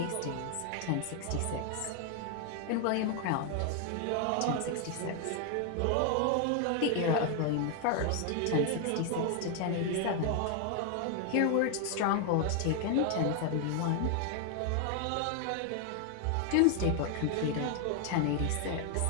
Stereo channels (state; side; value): different; both; correlation 0.00